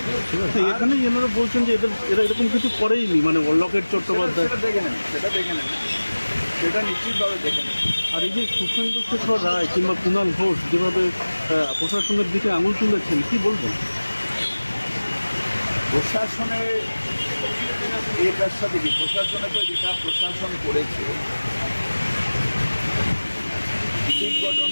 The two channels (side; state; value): both; inverted; correlation -1.00